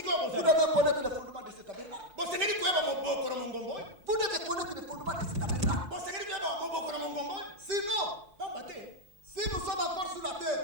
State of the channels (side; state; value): left; late; 5.1 ms